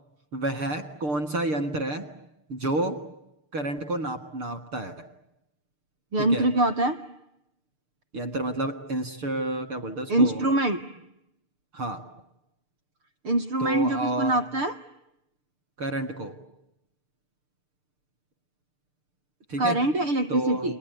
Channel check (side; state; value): left; late; 6.7 ms